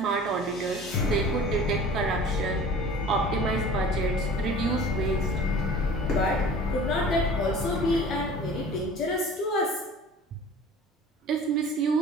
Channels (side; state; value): both; normal; correlation 0.43